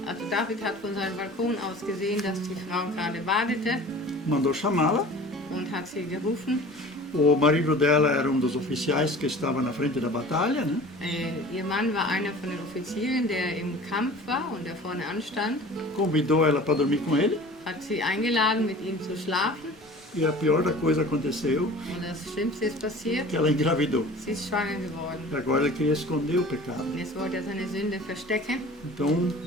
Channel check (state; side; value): normal; both; correlation 0.43